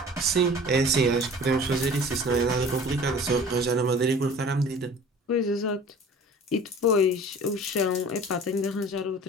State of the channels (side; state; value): both; normal; correlation 0.45